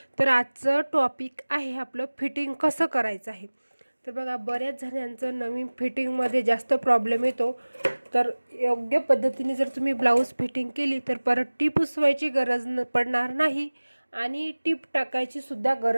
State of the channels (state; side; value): inverted; both; correlation -1.00